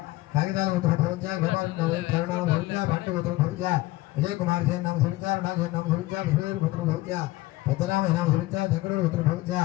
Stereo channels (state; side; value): quieter; right; 18.7 dB